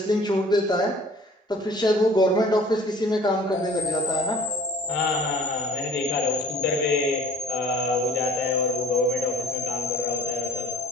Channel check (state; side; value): normal; both; correlation 0.51